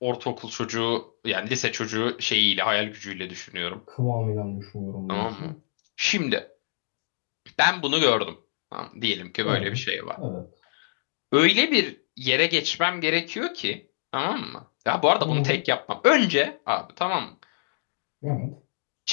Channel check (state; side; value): silent; right; digital silence